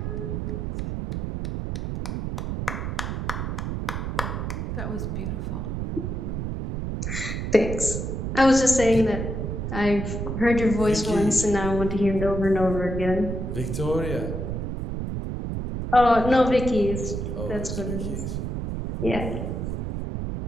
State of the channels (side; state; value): right; noise; rumble, 3 dB below the sound